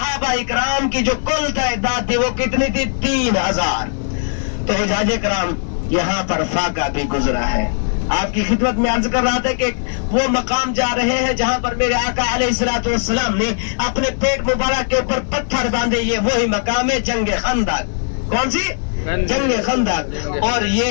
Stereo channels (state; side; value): silent; right; 67 dB below the other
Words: اکرام کی جو کل تعداد تھی وہ کتنی تھی؟ 3,000. تو حجاج کرام یہاں پر فاقہ بھی گزرا ہے. آپ کی خدمت میں عرض کر رہا تھا کہ وہ مقام جا رہے ہیں جہاں پر میرے آقا علیہ الصلوۃ والسلام نے اپنے پیٹ مبارک کے اوپر پتھر باندھے. یہ وہی مقام ہے جنگ خندق. کون سی؟ جنگ خندق. اور